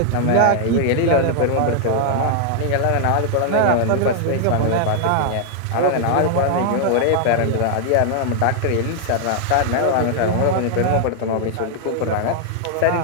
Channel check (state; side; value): different; both; correlation 0.00